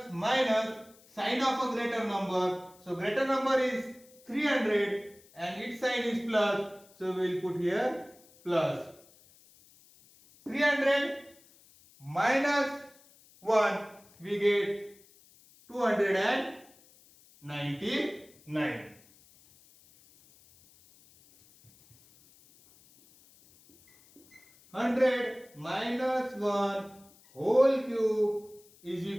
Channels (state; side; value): noise; left; hiss, 27 dB below the sound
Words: minus sign of a greater number. So greater number is 300 and its sign is plus. So we will put here plus. 300 minus 1 we get 299. 100 minus 1 whole cube is